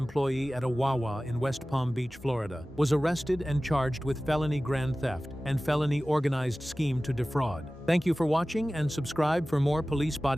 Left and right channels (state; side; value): normal; both; correlation 0.97